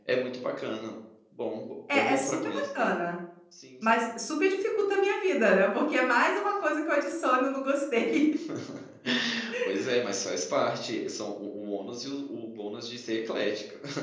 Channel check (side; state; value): both; identical; correlation 1.00